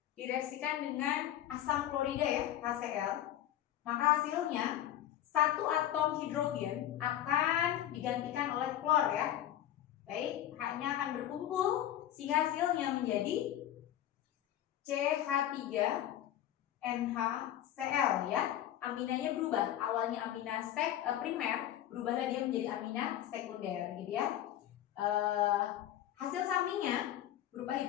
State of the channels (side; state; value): right; quieter; 12.1 dB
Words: direaksikan dengan asam klorida ya, HCl. Maka hasilnya satu atom hidrogen akan digantikan oleh klor ya. Baik, H-nya akan berkumpul sehingga hasilnya menjadi CH3NHCl ya. Aminanya berubah, awalnya amina primer, berubahlah dia menjadi amina sekunder gitu ya. Hasil sampingnya berupa